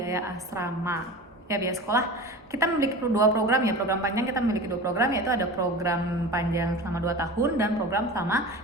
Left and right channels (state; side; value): normal; both; correlation 0.33